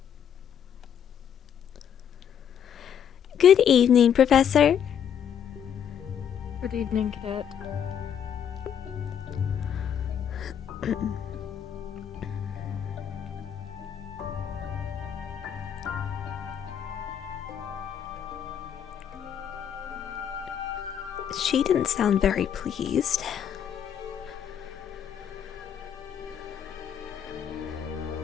Good evening, Professor. Good evening, Cadet. She didn't sound very pleased.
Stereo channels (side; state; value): right; quieter; 8.6 dB